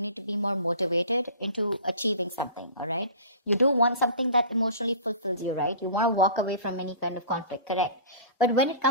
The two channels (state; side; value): inverted; both; correlation -0.40